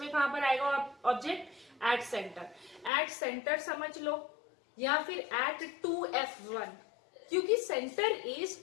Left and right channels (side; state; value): right; drops out; at 2.9 s